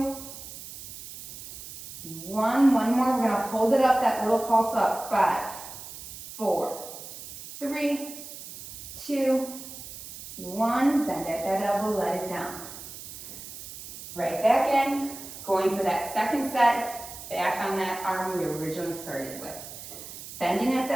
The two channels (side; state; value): right; noise; hiss, 12 dB below the sound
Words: 1. One more. We're going to hold it up, that little pulse up. 5, 4, 3, 2, 1. Bend at that elbow, let it down. Right back in, going for that second set, back on that arm we originally started with. Bending at